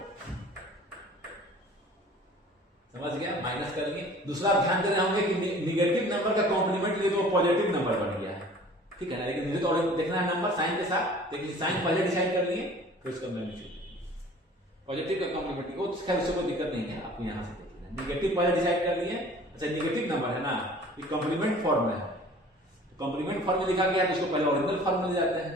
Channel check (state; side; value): normal; both; correlation 0.48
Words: समझ गया, माइनस कर लिए। दूसरा ध्यान देना होंगे कि नेगेटिव नंबर का कॉम्प्लीमेंट लिए तो पॉजिटिव नंबर बन गया है, ठीक है ना, लेकिन मुझे तो देखना है नंबर साइन के साथ, लेकिन साइन पहले डिसाइड कर लिए, फिर उसका मैग्नीट्यूड पॉजिटिव का कॉम्प्लीमेंट, वो खैर उससे कोई दिक्कत नहीं है, आपको यहां से देखना। नेगेटिव पहले डिसाइड कर लिए, अच्छा नेगेटिव नंबर है ना, ये कॉम्प्लीमेंट फॉर्म में है, कॉम्प्लीमेंट फॉर्म में लिखा गया है तो उसको पहले ओरिजिनल फॉर्म में ले जाते हैं,